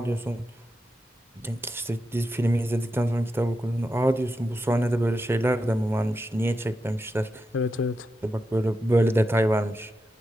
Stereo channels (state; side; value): normal; both; correlation 0.88